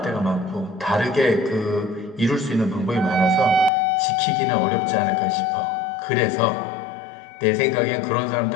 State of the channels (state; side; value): drops out; right; at 3.7 s